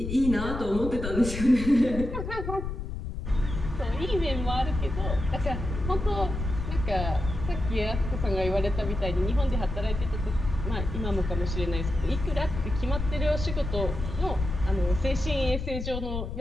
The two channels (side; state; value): left; noise; rumble, 5 dB below the sound